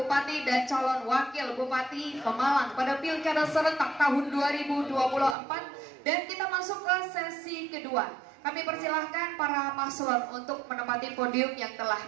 dan calon wakil bupati Pemalang pada Pilkada serentak tahun 2024, dan kita masuk ke sesi kedua. Kami persilahkan para paslon untuk menempati podium yang telah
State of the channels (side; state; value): left; drops out; at 5.4 s